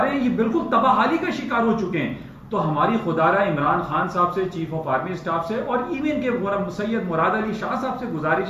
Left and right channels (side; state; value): both; identical; correlation 1.00